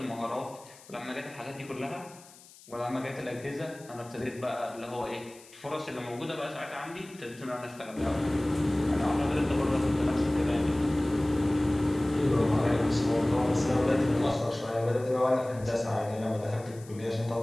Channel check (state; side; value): noise; left; hiss, 22 dB below the sound